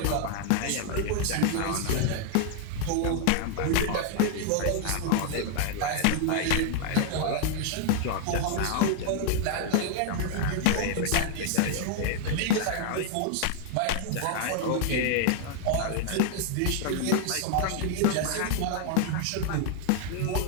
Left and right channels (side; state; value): both; different; correlation 0.00